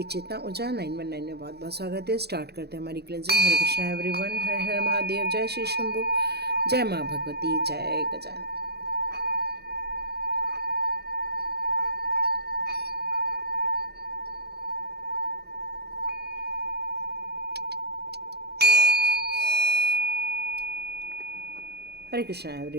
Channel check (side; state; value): left; late; 0.47 ms